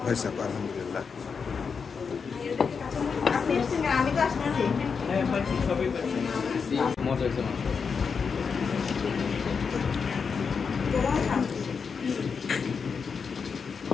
হয়েছে আপু আলহামদুলিল্লাহ। মজা হয়েছে মাংস।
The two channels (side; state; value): right; quieter; 5.7 dB